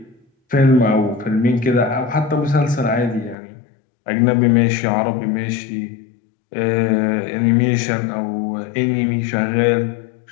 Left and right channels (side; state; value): right; drops out; at 3.4 s